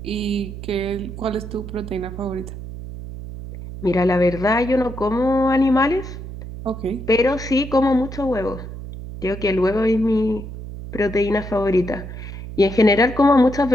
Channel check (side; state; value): right; noise; hum, 10 dB below the sound